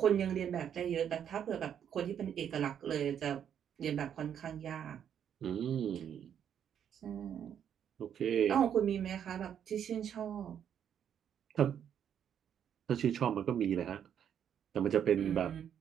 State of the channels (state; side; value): quieter; left; 8.9 dB